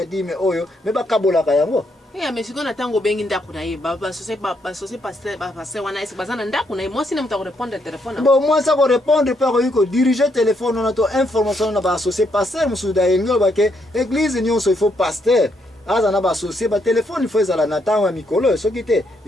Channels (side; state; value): both; normal; correlation 0.75